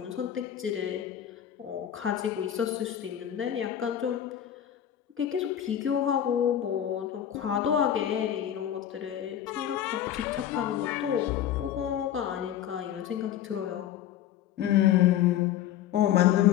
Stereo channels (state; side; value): quieter; right; 10.7 dB